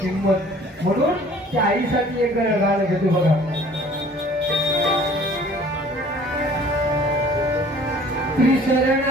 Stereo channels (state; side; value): normal; both; correlation 0.52